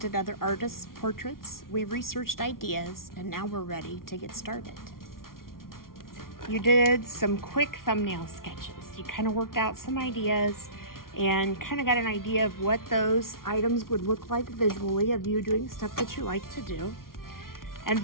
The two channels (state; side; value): late; right; 0.92 ms